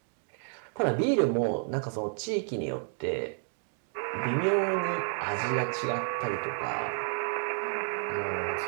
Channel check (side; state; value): left; silent; 57 dB below the other